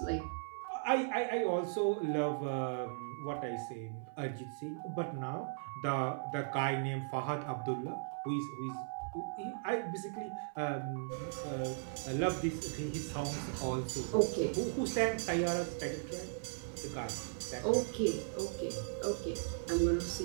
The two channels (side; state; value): left; silent; 53 dB below the other